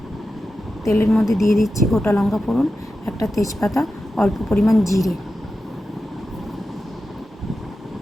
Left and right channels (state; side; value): normal; both; correlation 0.91